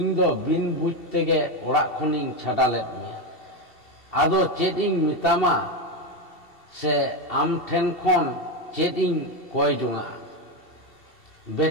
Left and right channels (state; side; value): late; right; 2.7 ms